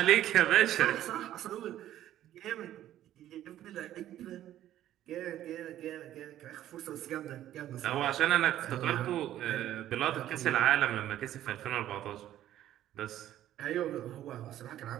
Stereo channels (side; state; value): left; quieter; 12.6 dB